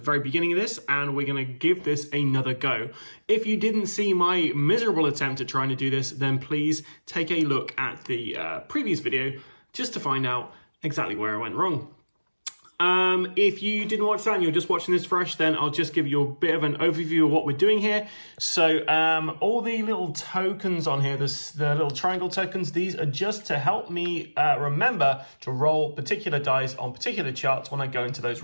beginning of this, and we're going to give this another go. If you didn't see my miserable attempt at trying to do this, then please take a look at the previous video just to find out exactly where I went wrong. If you didn't watch that and you're just watching this fresh, then I'll just give you a bit of an overview of what we're doing here. So all the little tokens on here, the little triangle tokens, these are just to help me remember to roll particular dice on particular charts when I go into those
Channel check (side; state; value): both; inverted; correlation -1.00